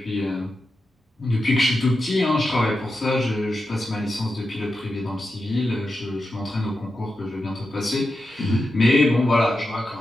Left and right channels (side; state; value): both; normal; correlation 0.89